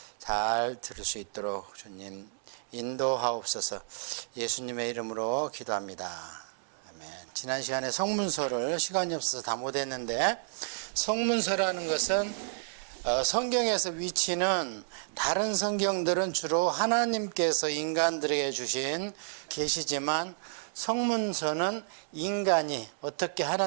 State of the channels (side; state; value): left; silent; digital silence